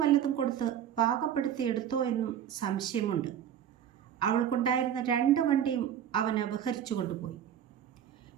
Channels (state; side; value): quieter; left; 9.7 dB